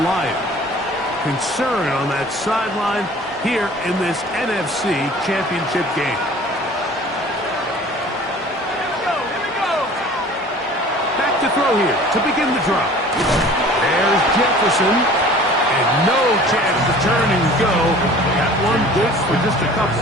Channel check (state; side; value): normal; both; correlation 0.46